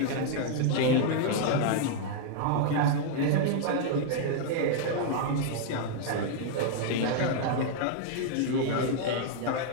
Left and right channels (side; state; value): both; different; correlation -0.01